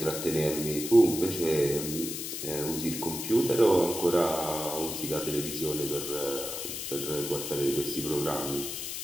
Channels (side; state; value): left; noise; hiss, 6 dB below the sound